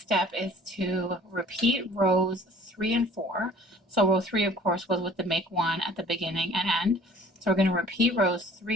is to repeat rows 3 and 4. So row 3, of course, was with the make 1 at the beginning and end. So we're going to repeat rows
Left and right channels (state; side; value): normal; both; correlation 0.51